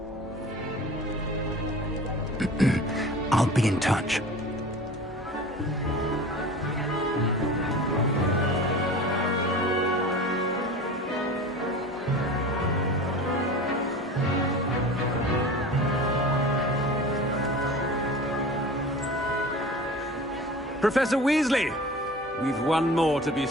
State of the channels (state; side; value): normal; both; correlation 0.37